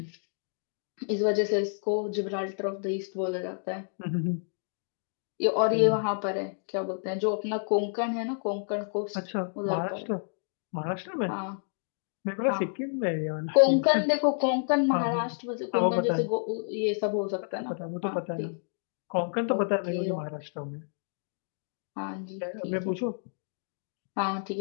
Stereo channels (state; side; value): silent; right; digital silence